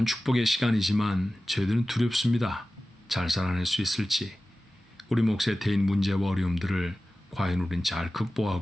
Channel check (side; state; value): both; normal; correlation 0.96